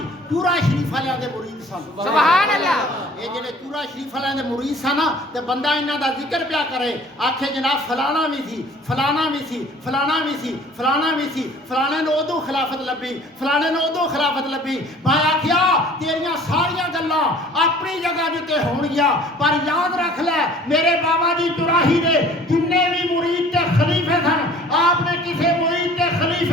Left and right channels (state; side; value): normal; both; correlation 0.50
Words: चूरा शरीफ वालियां दे मुरीद सन। सुभान अल्लाह ये जेड़े चूरा शरीफ वालियां दे मुरीद सन ना ते बंदा इन्हां दा जिक्र पिया करे आखे जनाब फलाना भी सी फलाना भी सी फलाना भी सी फलाना भी सी फलाने ने उदों खिलाफत लभी फलाने ने उदों खिलाफत लभी। मैं आख्या तेरियां सारियां गल्लां अपनी जगह जिते होणगियां पर याद रख ले मेरे बाबा जी चुराही दे जिन्ने भी मुरीद ते खलीफे सन आपने किसी मुरीद ते